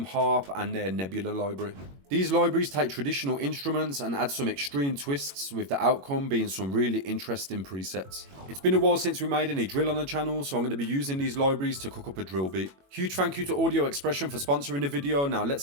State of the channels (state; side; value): late; left; 21 ms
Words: harp and their Nebula library. These libraries take traditional instruments and add some extreme twists, with the outcome being some really interesting presets. It's been a while since we made any drill on the channel, so I'm going to be using these libraries to cook up a drill beat. Huge thank you to Audio Expression for sponsoring the video. Now